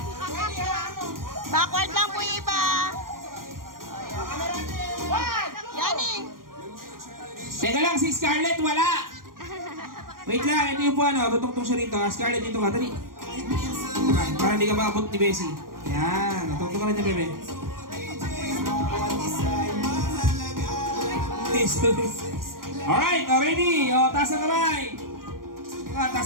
Backward lang po yung iba. Yaning. Teka lang, si Scarlett wala! Wait lang, ito yung po ano, tutungtong siya rito. Scarlett, dito ka, dali. Para hindi ka maabot ni Bessie. Yan, tutungtong ka rin niya, bebe. Alright, ready? O, taas ang kamay.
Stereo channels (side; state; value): left; late; 0.91 ms